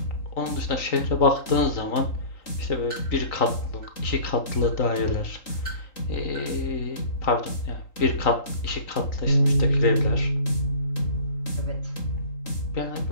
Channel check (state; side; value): late; right; 3.9 ms